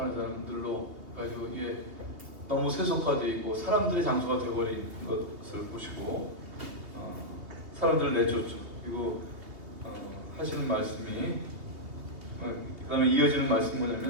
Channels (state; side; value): late; left; 2.9 ms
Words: 사람들로 가지고 이게 너무 세속화되어 있고 사람들의 장소가 되어버린 것을 보시고 사람들을 내쫓죠. 그리고 하시는 말씀이 그 다음에 이어지는 말씀이